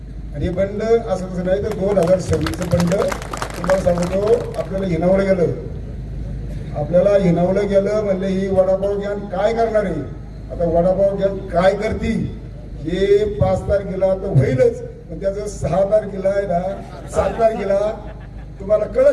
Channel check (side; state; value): both; identical; correlation 1.00